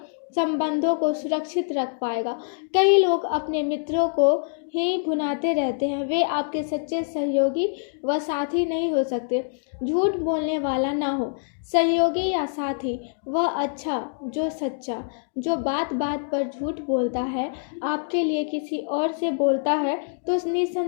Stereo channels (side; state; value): right; silent; digital silence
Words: संबंधों को सुरक्षित रख पाएगा। कई लोग अपने मित्रों को ही भुनाते रहते हैं, वे आपके सच्चे सहयोगी व साथी नहीं हो सकते। झूठ बोलने वाला ना हो सहयोगी या साथी, वह अच्छा जो सच्चा, जो बात बात पर झूठ बोलता है, आपके लिए किसी और से बोलता है तो